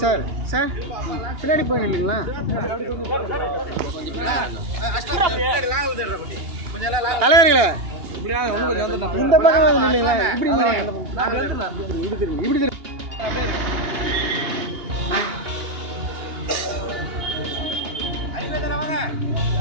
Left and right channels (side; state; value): left; late; 2.8 ms